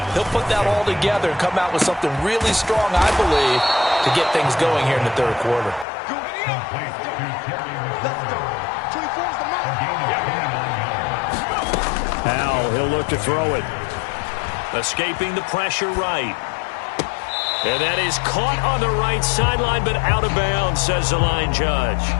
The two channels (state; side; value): drops out; right; at 5.9 s